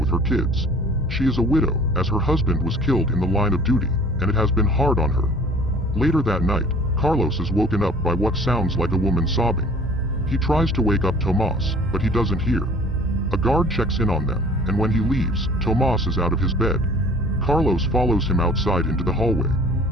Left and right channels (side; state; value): both; normal; correlation 0.49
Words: her kids. She is a widow, as her husband was killed in the line of duty, and it has been hard on her. Later that night, Carlos is woken up by what sounds like a woman sobbing. He tries to wake up Tomas, but he doesn't hear. A guard checks in on them, and when he leaves, Tomas is out of his bed. Carlos follows him outside into the hallway.